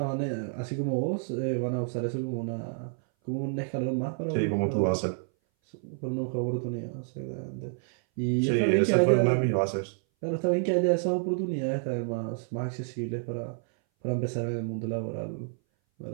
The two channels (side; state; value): left; silent; 58 dB below the other